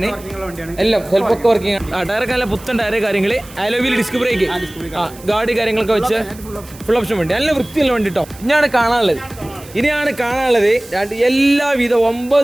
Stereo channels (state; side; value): noise; right; hiss, 20 dB below the sound